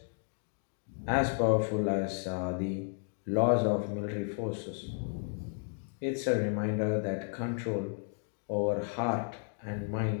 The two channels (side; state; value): right; silent; 56 dB below the other